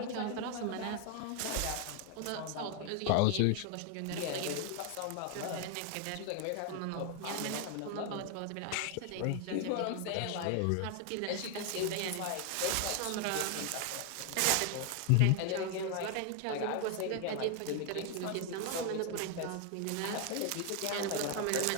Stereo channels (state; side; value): different; both; correlation 0.00